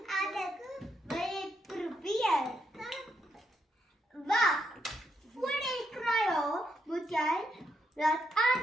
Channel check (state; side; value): normal; both; correlation 0.79